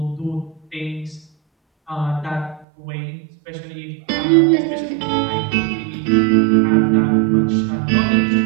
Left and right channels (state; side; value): drops out; left; at 2.7 s